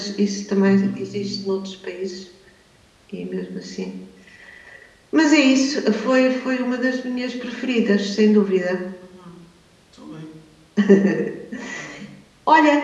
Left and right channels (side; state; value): both; identical; correlation 1.00